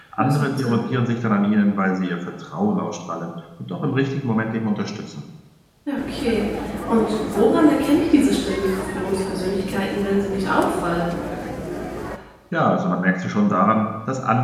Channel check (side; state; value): both; identical; correlation 1.00